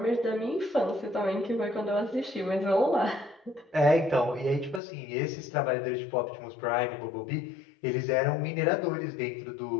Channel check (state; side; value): drops out; right; at 4.8 s